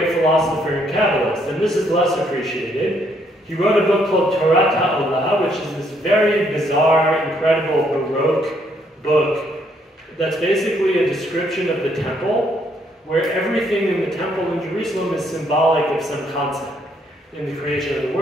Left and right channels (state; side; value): normal; both; correlation 0.70